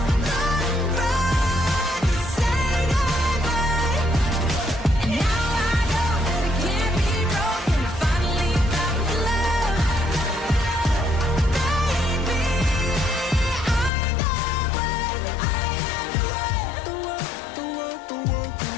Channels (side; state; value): right; drops out; at 13.9 s